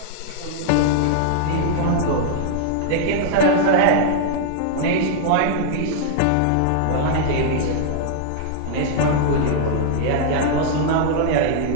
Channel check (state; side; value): different; both; correlation -0.01